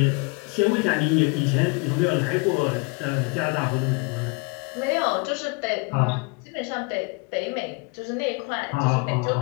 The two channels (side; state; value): right; quieter; 29.5 dB